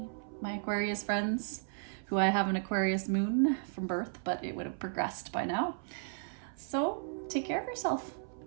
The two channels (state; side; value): silent; left; 55 dB below the other